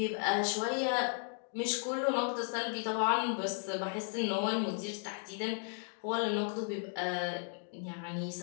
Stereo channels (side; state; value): right; silent; 54 dB below the other